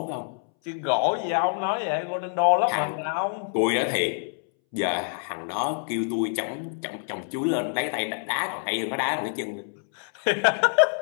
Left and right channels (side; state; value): right; silent; 61 dB below the other